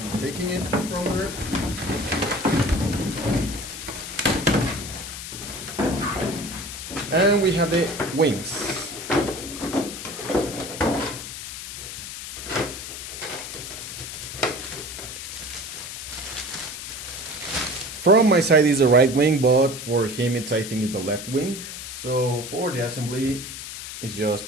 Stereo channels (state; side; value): noise; left; hiss, 9 dB below the sound